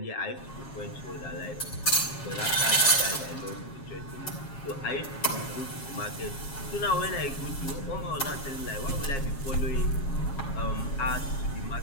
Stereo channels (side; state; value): right; late; 7.3 ms